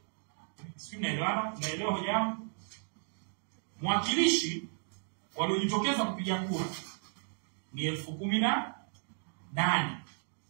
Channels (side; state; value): left; silent; 55 dB below the other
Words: Sisi naelewa hoja yangu. Mwakilishi waliojitokeza kupiga kura ni 18,000.